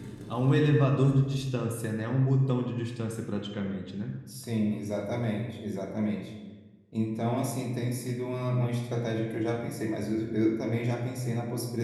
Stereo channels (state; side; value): identical; both; correlation 1.00